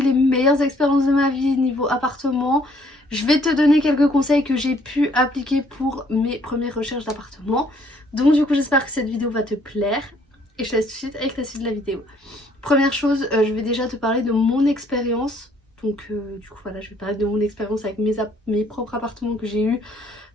les meilleures expériences de ma vie niveau appartement, je vais te donner quelques conseils que j'ai pu appliquer pour mes premières recherches d'appartement. Donc du coup j'espère que cette vidéo va te plaire et je te laisse tout de suite avec la suite de la vidéo. Première chose, je vais déjà te parler de mon expérience. Donc du coup voilà, je vais parler de mon expérience avec mes propres appartements que j'ai eu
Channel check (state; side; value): normal; both; correlation 0.63